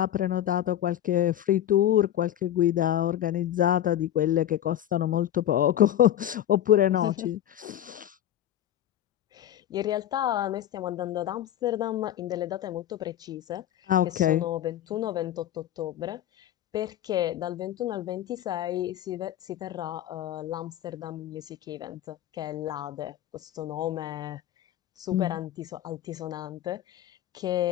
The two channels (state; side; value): quieter; right; 11.6 dB